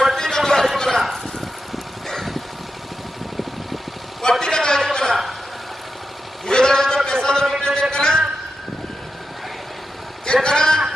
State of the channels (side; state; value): both; normal; correlation 0.89